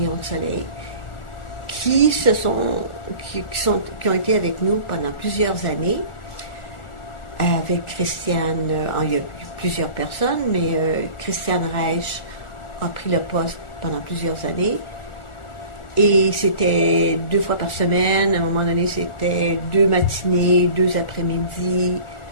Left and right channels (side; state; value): right; late; 1.4 ms